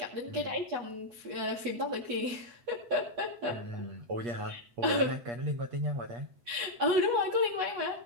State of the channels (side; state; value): left; late; 8.2 ms